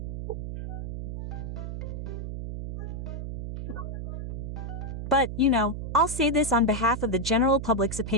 But, you know, I'll say this on behalf of the general public's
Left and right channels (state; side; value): noise; right; hum, 5 dB below the sound